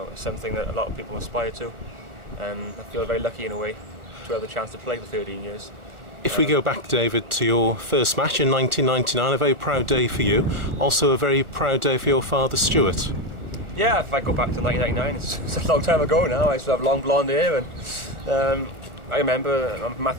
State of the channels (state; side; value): late; left; 1.4 ms